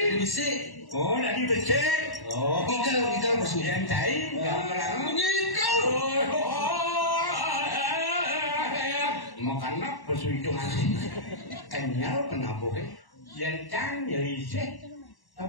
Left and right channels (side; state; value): right; late; 1.1 ms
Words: Bisa. Oh, dari becek. Oh, Gigal masuk. yang cair, gamelan. Gigal. Makanya perhitungan kenyal penabuhnya. Yang isih,